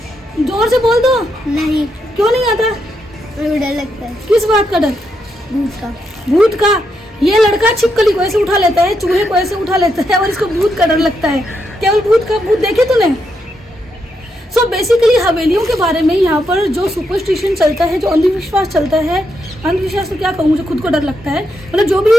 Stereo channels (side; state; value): both; normal; correlation 0.81